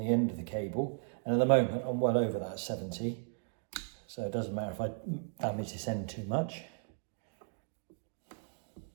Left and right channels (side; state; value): left; silent; 54 dB below the other